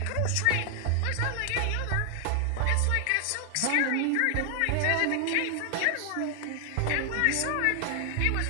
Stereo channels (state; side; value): different; both; correlation 0.00